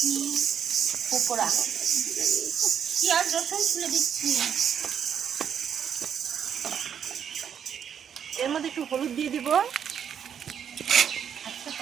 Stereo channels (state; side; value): quieter; left; 8.3 dB